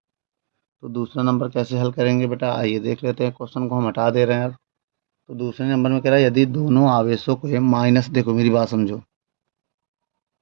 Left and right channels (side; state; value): left; silent; 66 dB below the other